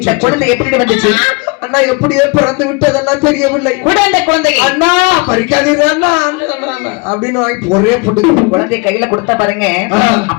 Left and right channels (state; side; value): quieter; right; 29.5 dB